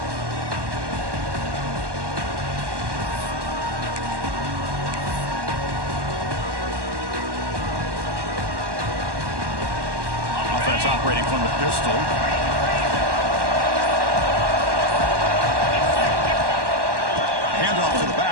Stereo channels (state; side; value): late; left; 1.1 ms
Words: Offense operating from the pistol. Handoff to the